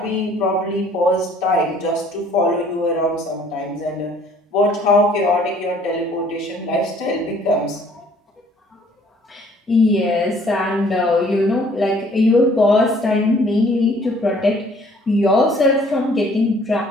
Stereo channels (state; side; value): normal; both; correlation 0.58